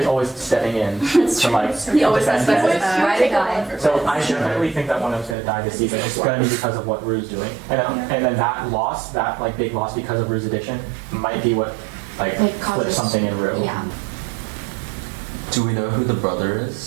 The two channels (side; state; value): left; drops out; at 5.4 s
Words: is always stepping in to like defend Fez. So I definitely think that one of them's gonna die this season. It's gonna be because of what Rue's doing, and then that loss, that like big loss because of Rue's addiction, might be what like flips something in Rue. Yeah. Do we know who the brother